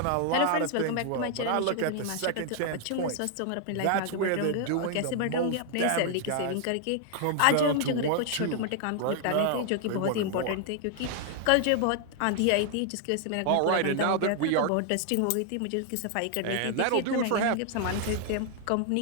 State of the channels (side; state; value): both; different; correlation 0.00